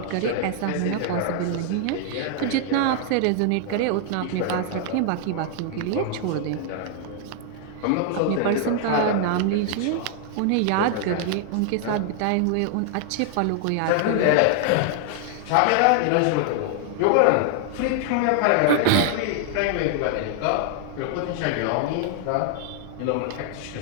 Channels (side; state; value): both; different; correlation 0.00